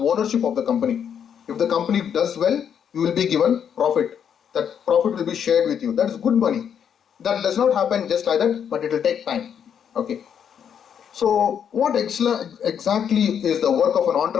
of the company. If the company does well, you will be given profit. That profit will be shared with you. That is good money. That does not happen just like that, but it will take time. Okay. So what exactly is the work of an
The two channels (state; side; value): quieter; right; 8.2 dB